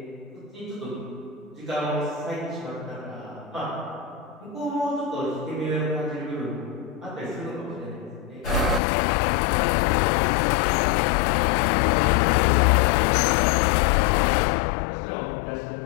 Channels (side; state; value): right; drops out; at 8.8 s